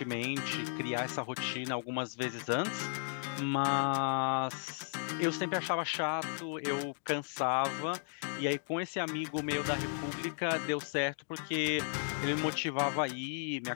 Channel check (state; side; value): silent; right; digital silence